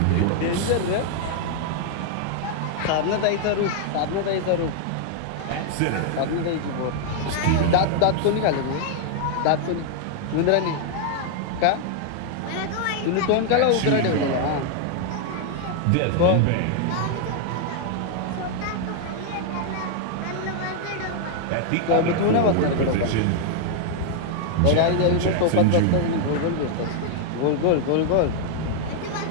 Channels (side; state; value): both; different; correlation 0.00